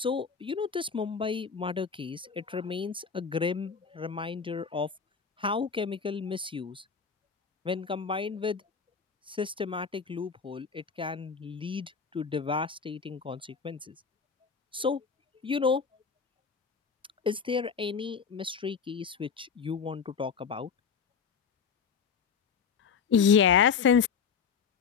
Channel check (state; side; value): quieter; right; 6.2 dB